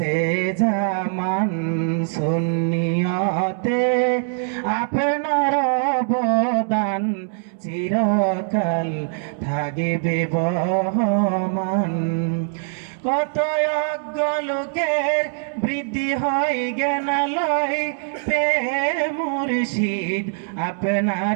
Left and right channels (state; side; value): silent; left; 64 dB below the other